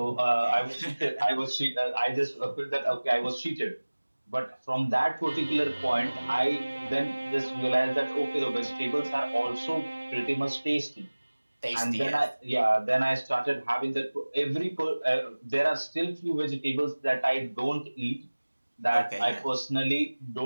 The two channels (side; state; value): both; inverted; correlation -1.00